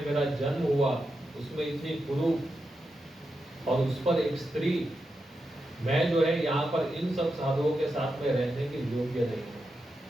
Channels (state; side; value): normal; both; correlation 0.87